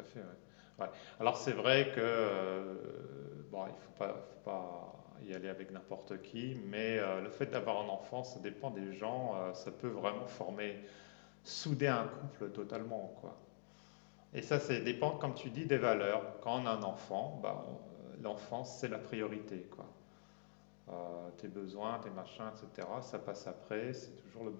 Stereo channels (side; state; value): right; silent; digital silence